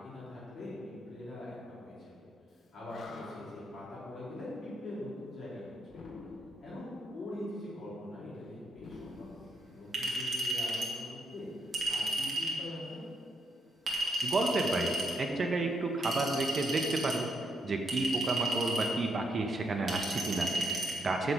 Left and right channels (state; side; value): normal; both; correlation 0.78